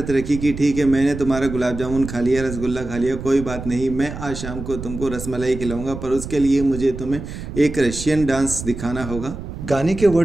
रखी कि ठीक है, मैंने तुम्हारा गुलाब जामुन खा लिया, रसगुल्ला खा लिया, कोई बात नहीं, मैं आज शाम को तुमको रसमलाई खिलाऊंगा, पर उसके लिए मुझे तुम्हें एक रशियन डांस दिखाना होगा। गाने के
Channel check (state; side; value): noise; right; rumble, 9 dB below the sound